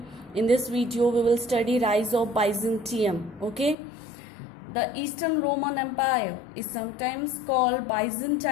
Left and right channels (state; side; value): drops out; right; at 3.8 s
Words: in this video we will study rise of Byzantium. Okay. The Eastern Roman Empire is sometimes called